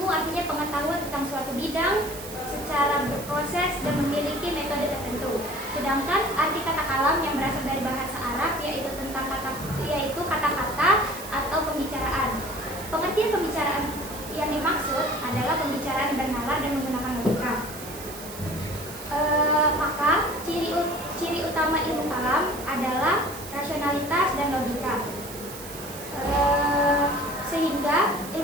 artinya pengetahuan tentang suatu bidang secara berproses dan memiliki metode tertentu. Sedangkan arti kata kalam yang berasal dari bahasa Arab yaitu kata-kata atau pembicaraan. Pengertian pembicaraan yang dimaksud adalah pembicaraan bernalar dan menggunakan logika. Maka ciri utama ilmu kalam adalah rasionalitas dan logika. Sehingga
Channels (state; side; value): noise; right; hiss, 14 dB below the sound